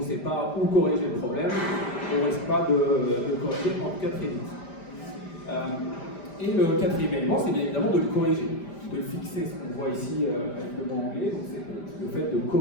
sait pas où corriger le problème, on ne risque pas de corriger, en tout cas très vite. Et le quatrième élément, c'est bien évidemment de le corriger, de le fixer, ce qu'on voit ici avec le mot anglais, donc c'est le fait de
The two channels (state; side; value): late; right; 5.0 ms